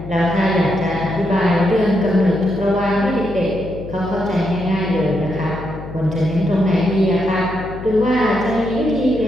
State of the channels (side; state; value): left; noise; hum, 11 dB below the sound